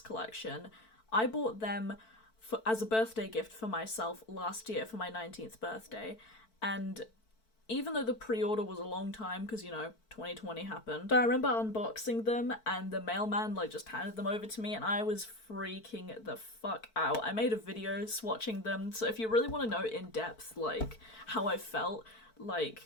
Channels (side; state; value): right; late; 4.5 ms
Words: collection, I bought them as a birthday gift for myself last year for my 19th birthday, and even though the pre-order was a long time because, you know, 2020 happened, I remember unboxing them and the mailman like just handed them over to me and I was freaking the fuck out. I made a video swatching them, so if you really want to know in depth like how I felt